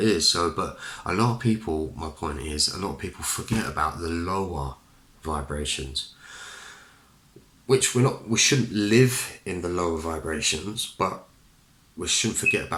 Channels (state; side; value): identical; both; correlation 1.00